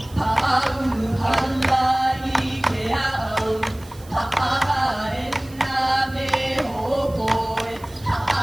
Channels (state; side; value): noise; right; hiss, 23 dB below the sound